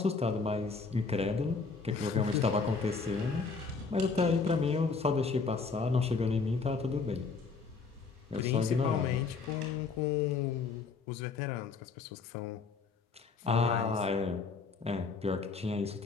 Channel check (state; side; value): quieter; right; 4.6 dB